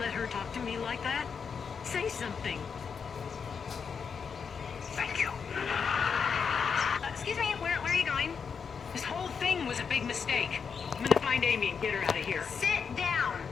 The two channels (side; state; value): right; quieter; 6.2 dB